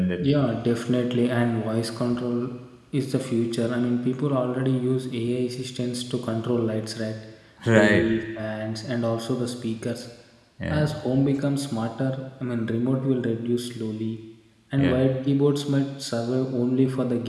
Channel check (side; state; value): both; identical; correlation 1.00